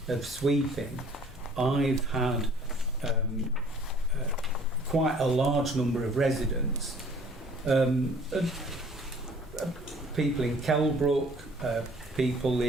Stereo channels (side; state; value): both; normal; correlation 0.54